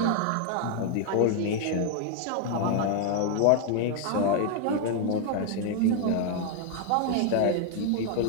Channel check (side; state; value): both; different; correlation 0.01